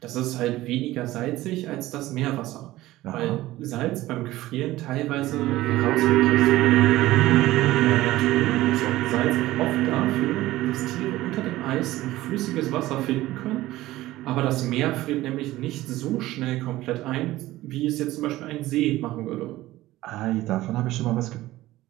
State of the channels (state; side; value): quieter; left; 16.7 dB